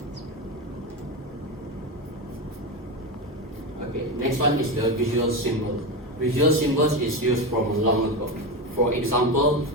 Okay, next one is the visual symbol. Visual symbols is used from long ago. For example,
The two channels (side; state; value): both; normal; correlation 0.17